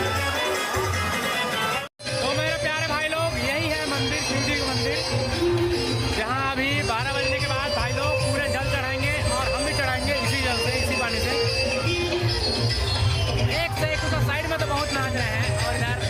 तो मेरे प्यारे भाई लोग यही है मंदिर, शिव जी का मंदिर, जहाँ अभी 12 बजने के बाद भाई लोग पूरे जल चढ़ाएंगे और हम भी चढ़ाएंगे इसी जल से, इसी पानी से। एक से एक उधर साइड में तो बहुत नाच रहे हैं और इधर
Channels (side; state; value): both; identical; correlation 1.00